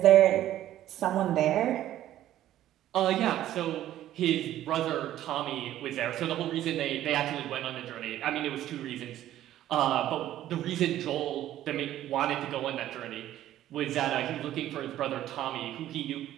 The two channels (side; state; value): left; quieter; 12.9 dB